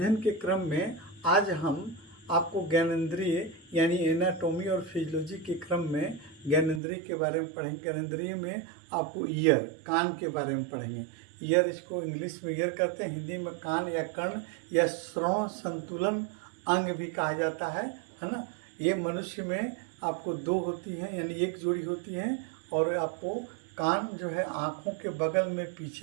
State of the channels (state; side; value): drops out; left; at 6.8 s